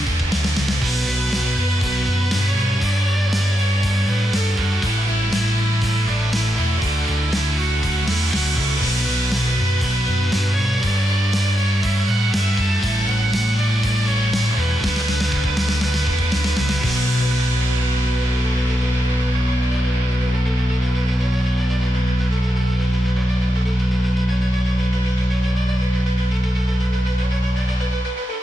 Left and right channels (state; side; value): normal; both; correlation 0.85